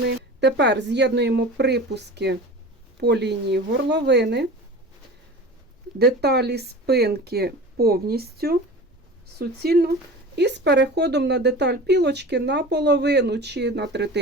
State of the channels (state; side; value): normal; both; correlation 0.36